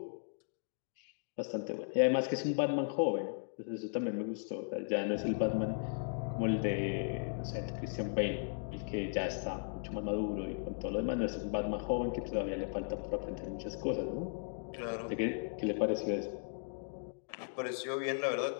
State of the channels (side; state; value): right; silent; digital silence